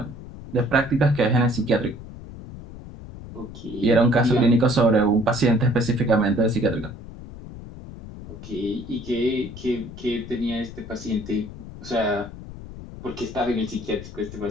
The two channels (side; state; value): left; noise; rumble, 13 dB below the sound